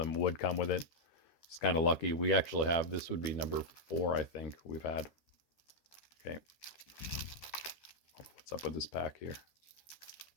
would come with it. It's kind of lucky. We actually have, this would be number 4, I think we've had. Okay. What's up with this pack here?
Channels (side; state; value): right; late; 13 ms